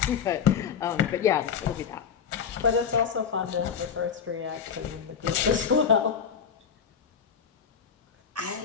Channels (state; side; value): quieter; right; 7.1 dB